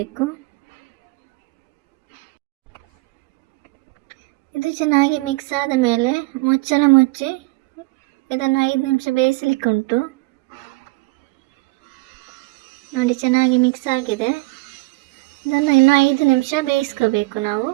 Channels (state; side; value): quieter; left; 24.5 dB